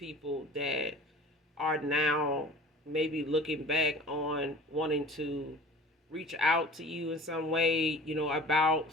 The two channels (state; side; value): normal; both; correlation 0.43